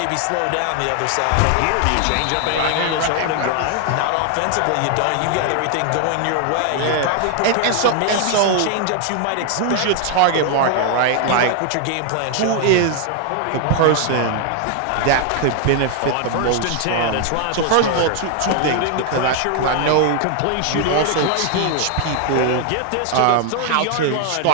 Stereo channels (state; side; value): different; both; correlation 0.00